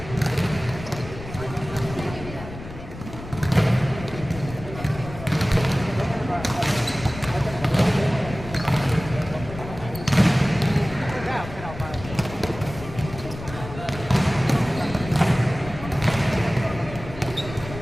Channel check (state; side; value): noise; left; rumble, 12 dB below the sound